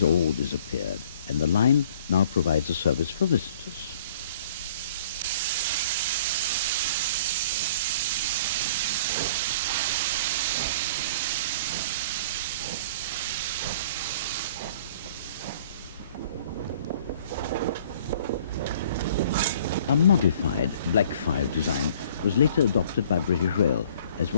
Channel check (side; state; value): both; inverted; correlation -0.53